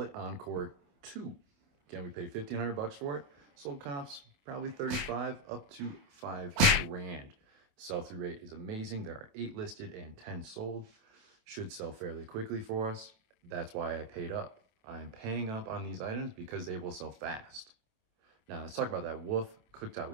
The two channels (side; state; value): left; late; 28 ms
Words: Encore 2. Again, we paid $1,500 for it. Sold comps, probably 35 up to 5 grand. Sell-through rate is amazing. There are 8 listed and 10 sold. Should sell fairly quickly for us. That's why I paid up. I am paying up on these items because they will sell fast. Now let's talk about that Wolf cooktop